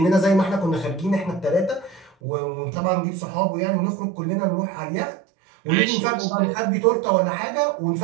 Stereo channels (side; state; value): left; drops out; at 2.1 s